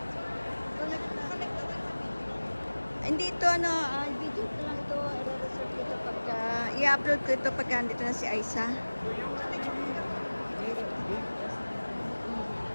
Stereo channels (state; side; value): inverted; both; correlation -1.00